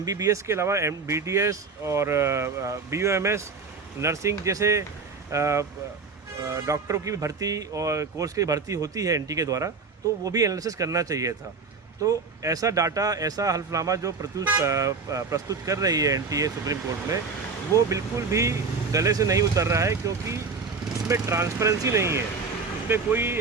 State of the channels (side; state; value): left; quieter; 4.7 dB